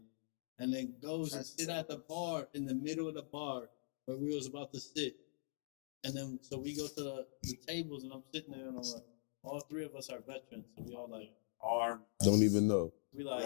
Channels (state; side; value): silent; right; digital silence